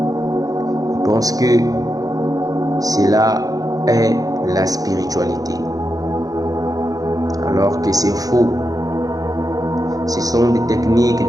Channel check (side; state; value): left; late; 0.18 ms